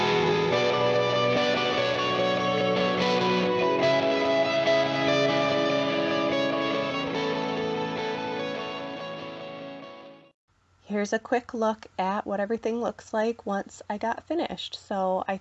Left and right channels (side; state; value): both; identical; correlation 1.00